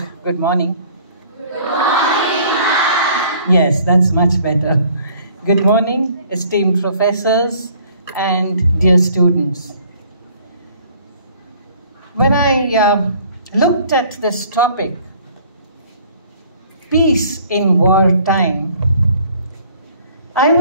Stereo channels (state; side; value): inverted; both; correlation -0.56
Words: good morning. Good morning, ma'am. Yes, that's much better. Good morning, esteemed professors and dear students. When I looked at this topic, peace in wartime, I